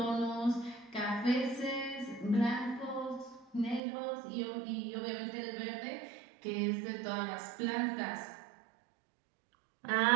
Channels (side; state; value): left; drops out; at 3.8 s